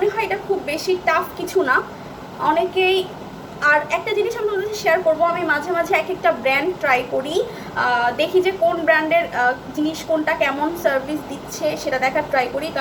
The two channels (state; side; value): identical; both; correlation 1.00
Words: হয় এটা খুব বেশি টাফ কিছু না, অনেকেই। আর একটা জিনিস আমি তোমাদের শেয়ার করবো, আমি মাঝে মাঝে এক একটা ব্র্যান্ড ট্রাই করি, দেখি যে কোন ব্র্যান্ডের জিনিস কোনটা কেমন সার্ভিস দিচ্ছে সেটা দেখার ট্রাই করি,